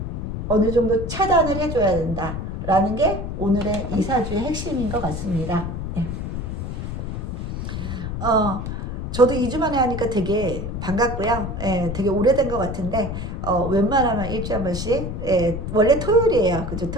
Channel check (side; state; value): left; noise; rumble, 5 dB below the sound